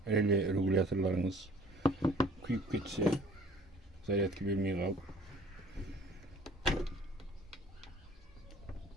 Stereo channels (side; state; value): both; normal; correlation 0.52